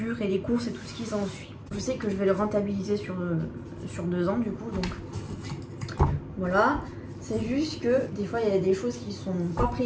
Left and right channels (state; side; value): identical; both; correlation 1.00